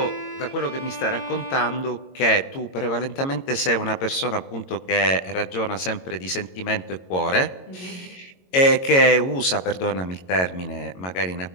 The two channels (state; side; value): late; right; 22 ms